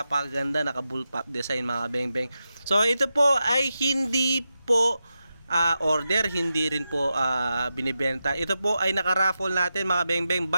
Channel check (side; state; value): both; inverted; correlation -0.90